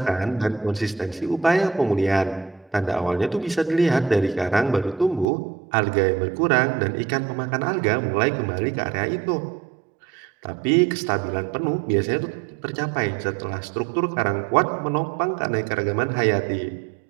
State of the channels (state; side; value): drops out; left; at 5.3 s